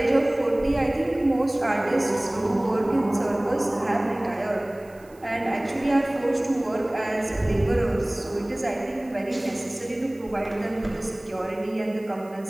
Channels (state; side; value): noise; right; hiss, 28 dB below the sound